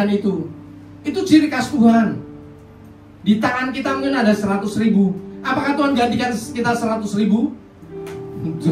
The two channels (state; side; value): identical; both; correlation 1.00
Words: itu. Itu ciri khas Tuhan. Di tangan kita mungkin ada 100.000. Apakah Tuhan gantikan kita 100.000?